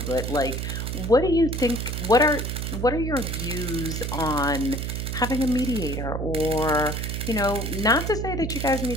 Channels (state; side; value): noise; right; hum, 3 dB below the sound